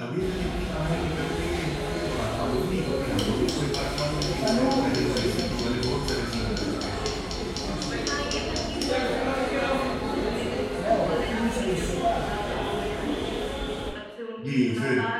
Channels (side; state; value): both; identical; correlation 1.00